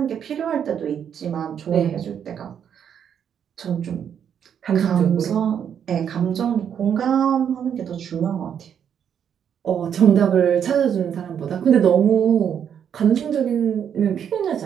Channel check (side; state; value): left; quieter; 8.4 dB